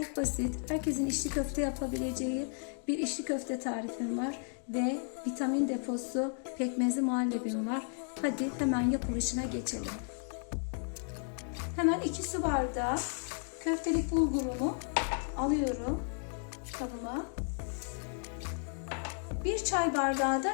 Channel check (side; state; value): right; silent; 55 dB below the other